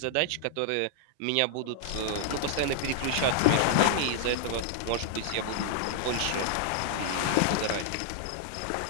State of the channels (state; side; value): different; both; correlation 0.00